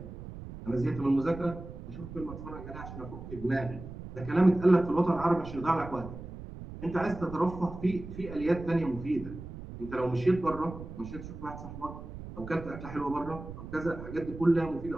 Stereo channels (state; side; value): noise; right; rumble, 12 dB below the sound